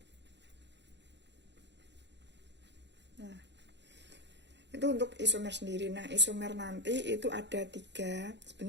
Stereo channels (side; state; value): left; late; 0.51 ms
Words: Nah, itu untuk isomer sendiri. Nah, isomer nanti itu ada 3.